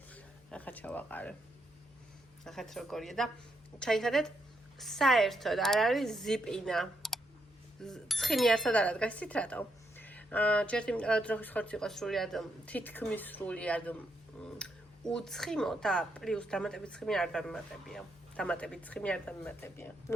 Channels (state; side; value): noise; left; hum, 29 dB below the sound